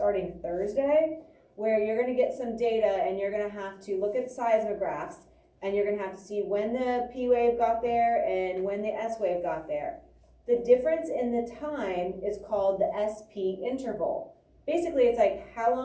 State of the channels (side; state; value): both; identical; correlation 1.00